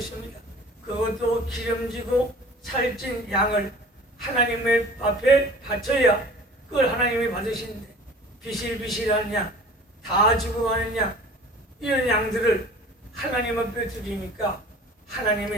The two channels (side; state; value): both; normal; correlation 0.45